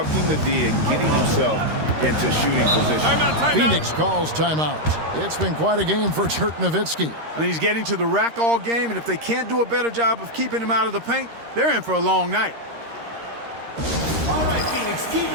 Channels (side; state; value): left; late; 13 ms